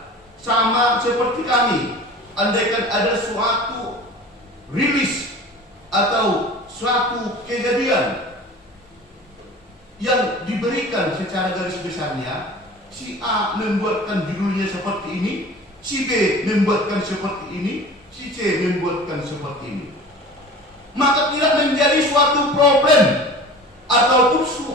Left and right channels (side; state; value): both; normal; correlation 0.40